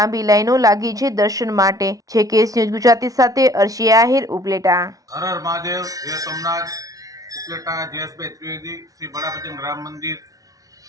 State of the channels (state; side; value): late; left; 0.17 ms